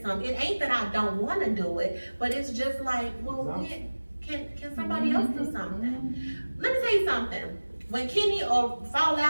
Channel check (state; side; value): inverted; both; correlation -1.00